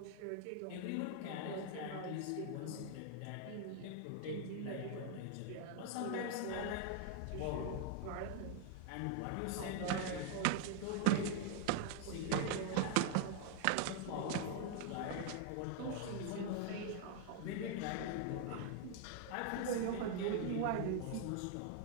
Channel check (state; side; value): different; both; correlation 0.00